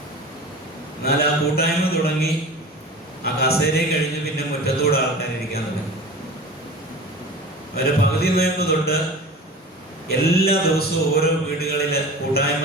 എന്നാൽ ആ കൂട്ടായ്മ തുടങ്ങി, ആ കസേരയെ കഴിഞ്ഞ് പിന്നെ മുറ്റത്തോടെ ആൾക്കാരിരിക്കാൻ തുടങ്ങി. അവരെ പകുതി നോയമ്പ് തൊട്ട് എല്ലാ ദിവസവും ഓരോ വീടുകളിൽ കൂട്ടായ്മ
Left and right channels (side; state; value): both; normal; correlation 0.36